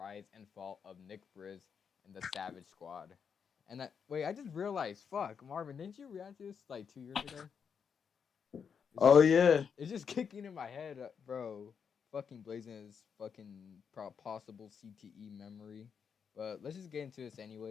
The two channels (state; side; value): quieter; right; 6.7 dB